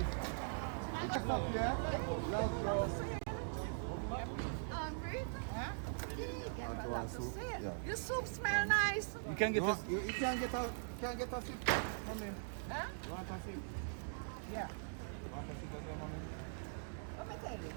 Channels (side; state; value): left; silent; digital silence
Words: Just up, yeah? Love, girl. Do you want soup? Yeah. Your soup smell nice. You can You, want, you can't get a sip, mommy. Huh? You want a sip? Yeah. You want a sip as well, mommy? I'm going to